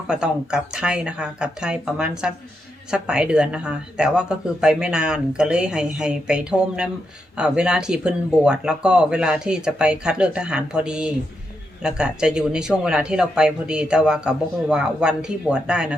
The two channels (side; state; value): both; normal; correlation 0.83